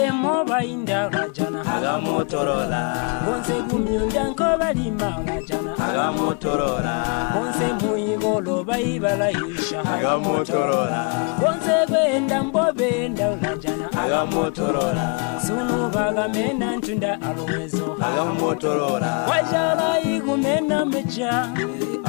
moba inda olajana agamotorora Bonse gumyunda nkoba lima olajana agamotorora Bonse muigolo baibala isha agamotorora Bonse gwenda mbovenda olajana agamotorora Sunu baga mena ntunda alowezo agamotorora Wajala igumena mecha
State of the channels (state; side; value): quieter; right; 34.6 dB